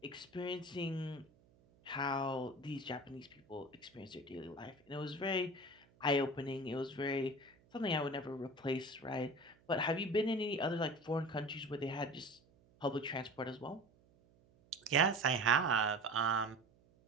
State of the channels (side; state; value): right; noise; hum, 30 dB below the sound